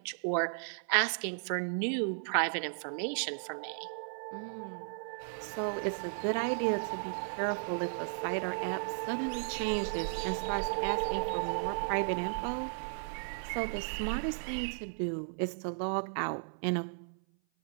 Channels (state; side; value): silent; left; 55 dB below the other